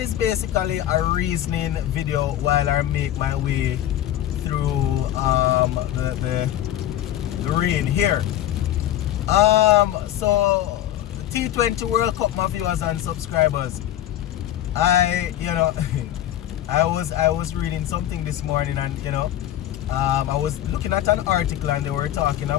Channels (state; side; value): quieter; right; 12.4 dB